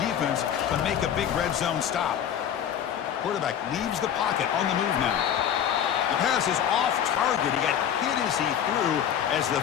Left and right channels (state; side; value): quieter; right; 9.4 dB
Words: to make a big red zone stop. Quarterback leaves the pocket on the move now. The pass is off target. He got hit as he threw as the